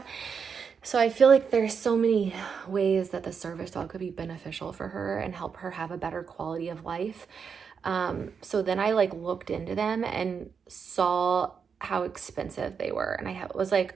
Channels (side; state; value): left; quieter; 6.3 dB